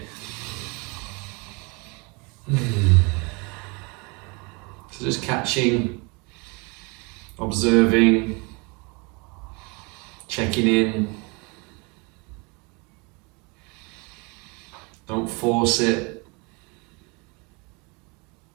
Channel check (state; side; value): quieter; left; 29.9 dB